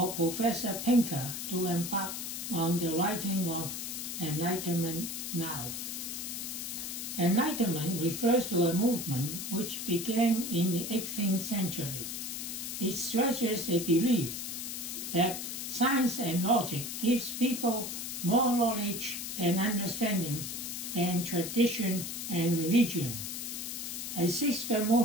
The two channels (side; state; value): left; noise; hiss, 5 dB below the sound